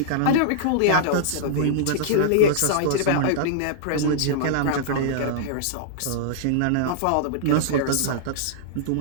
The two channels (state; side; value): different; both; correlation -0.02